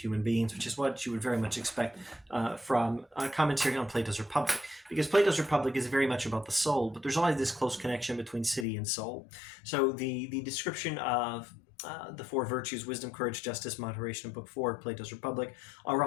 beings, which is what you would very much expect from a commentary on Plato's Republic, because Plato's Republic is very much about the soul, but there's always this close connection between city and soul. So the description of the 4 virtues, wisdom, courage, justice, moderation, in Book 4 of Plato's Republic, are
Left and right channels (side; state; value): right; drops out; at 8.7 s